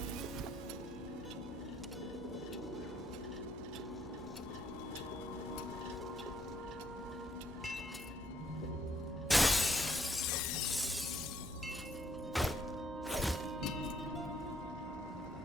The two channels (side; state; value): both; normal; correlation 0.69